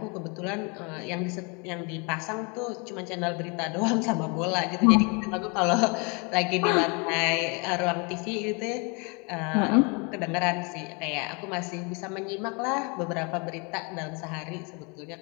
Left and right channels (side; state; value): right; quieter; 31.9 dB